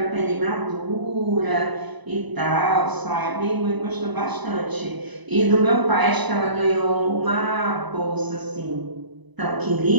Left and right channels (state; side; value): late; left; 1.0 ms